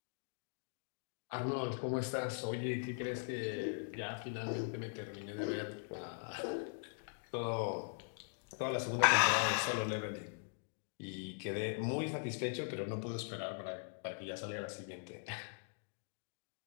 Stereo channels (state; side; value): silent; right; digital silence